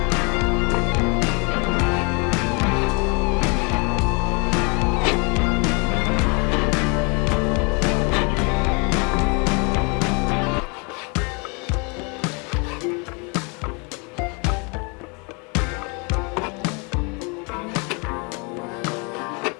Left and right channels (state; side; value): quieter; right; 32.2 dB